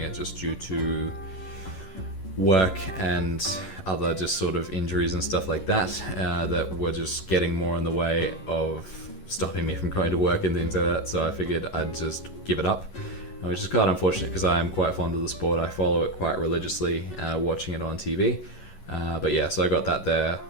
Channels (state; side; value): late; right; 11 ms